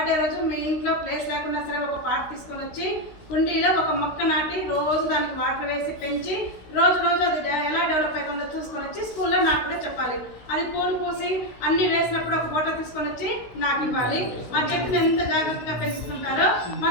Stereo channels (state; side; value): late; right; 16 ms